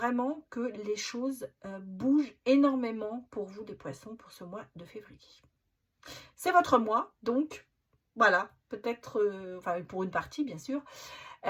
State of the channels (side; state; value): both; identical; correlation 1.00